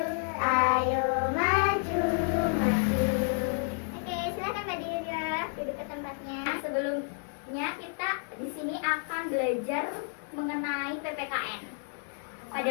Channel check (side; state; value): right; silent; 58 dB below the other